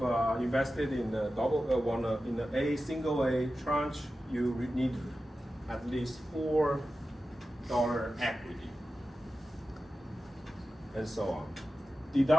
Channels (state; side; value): normal; both; correlation 0.93